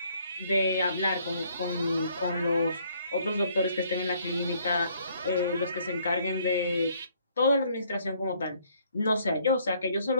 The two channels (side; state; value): both; inverted; correlation -0.65